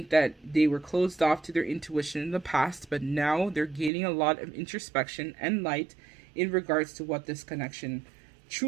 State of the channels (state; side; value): drops out; left; at 3.9 s